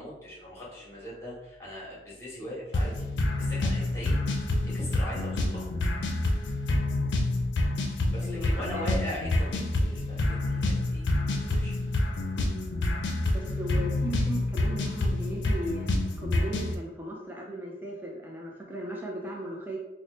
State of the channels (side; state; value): both; normal; correlation 0.85